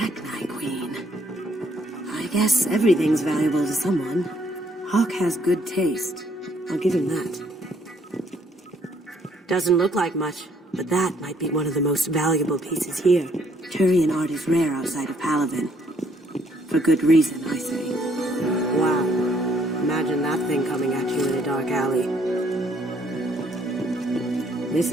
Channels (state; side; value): normal; both; correlation 0.67